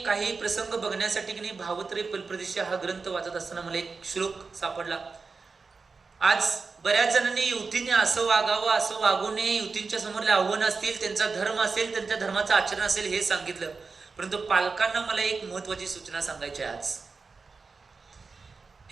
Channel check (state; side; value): quieter; left; 4.5 dB